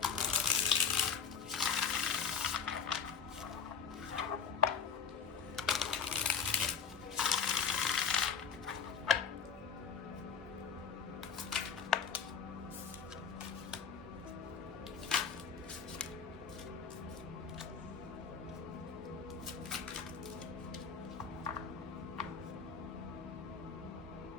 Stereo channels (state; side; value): quieter; right; 6.2 dB